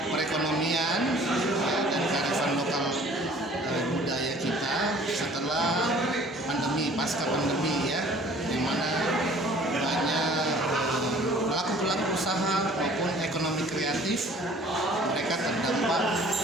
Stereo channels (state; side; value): normal; both; correlation 0.52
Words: perekonomian ya, dan kearifan lokal budaya kita setelah pandemi, pasca pandemi ya, yang mana banyak pelaku-pelaku usaha maupun ekonomi kreatif mereka terdampak